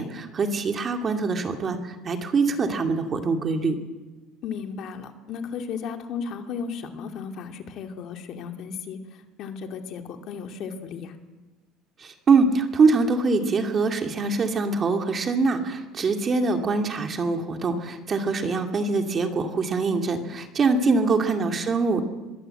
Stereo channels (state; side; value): quieter; left; 3.3 dB